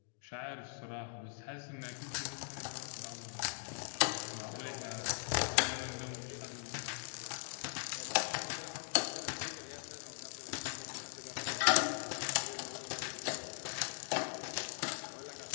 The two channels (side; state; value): right; silent; digital silence